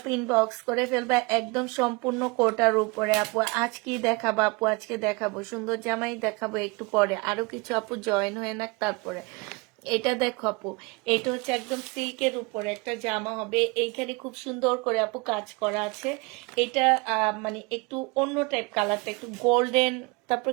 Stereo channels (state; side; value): quieter; left; 27.5 dB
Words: ইনবক্স করে ফেলবা, একদম সম্পূর্ণ কোটার উপরে আপু। আজ কি দেখাবো আপু, আজকে দেখাবো সুন্দর জামাই দেখাবো, একটু পরে আরো কিছু আপু জয়েন হয়ে নাক তারপরে। এটা দেখো আপু, এটা হচ্ছে একদম সিল্কের উপরে একটা জামা হবে, এইখানে খুব সুন্দর করে আপু কাজ করা আছে। এটা মানে একটু অন্য টাইপ কালারটা, একটু গোল্ডেন, তারপর